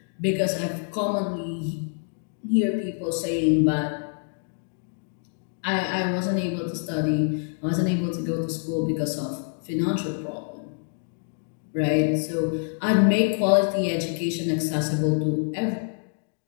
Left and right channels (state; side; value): silent; right; 61 dB below the other